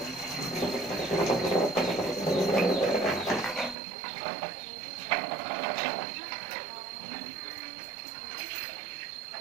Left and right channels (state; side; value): drops out; left; at 3.8 s